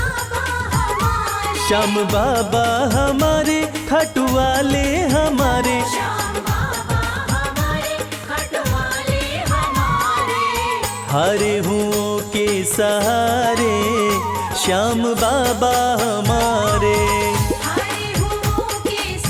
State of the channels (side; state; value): both; identical; correlation 1.00